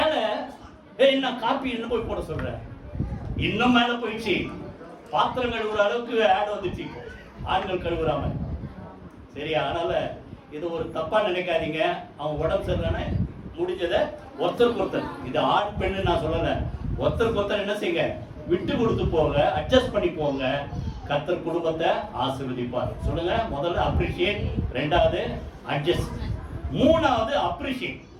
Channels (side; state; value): both; identical; correlation 1.00